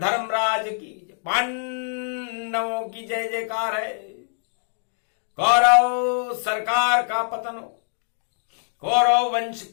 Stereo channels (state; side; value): silent; right; digital silence